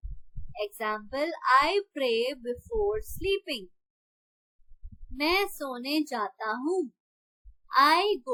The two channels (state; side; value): identical; both; correlation 1.00